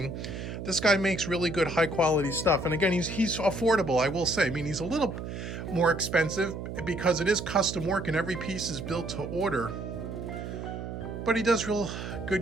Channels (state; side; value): noise; right; hum, 7 dB below the sound